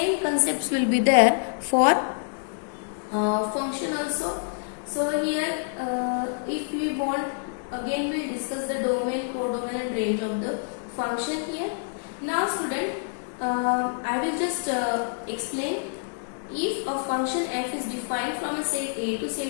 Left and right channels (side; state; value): right; silent; 60 dB below the other